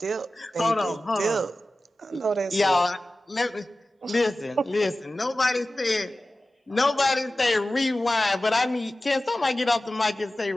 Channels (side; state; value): both; normal; correlation 0.95